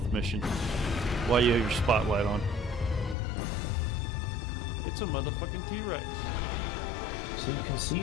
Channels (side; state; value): right; drops out; at 3.2 s